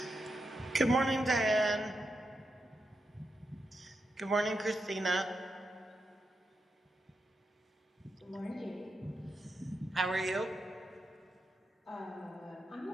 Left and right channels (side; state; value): both; normal; correlation 0.85